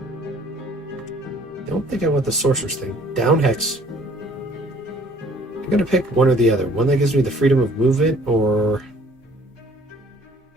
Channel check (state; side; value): normal; both; correlation 0.57